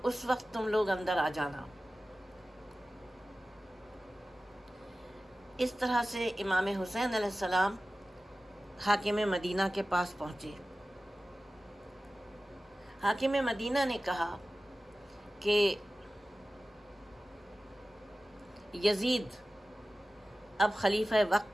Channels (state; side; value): normal; both; correlation 0.96